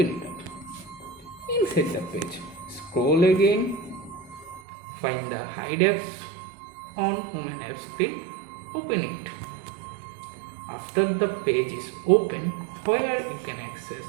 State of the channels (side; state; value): left; drops out; at 4.6 s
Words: it up. Inside the page, scroll again, find the hide apps on home and app screen, open it. After the page is open, where you can access